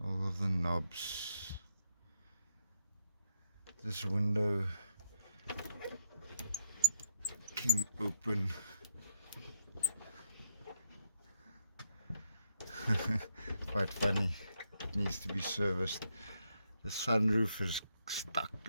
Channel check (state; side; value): inverted; both; correlation -0.78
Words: All of the knobs. This window can open. Quite funny. It needs to be serviced. The sunroof is stuck.